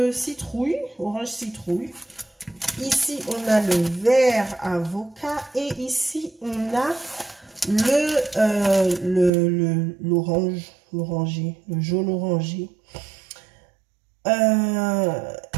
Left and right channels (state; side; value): drops out; left; at 9.3 s